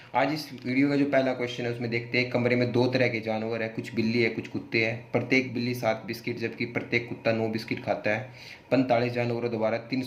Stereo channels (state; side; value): identical; both; correlation 1.00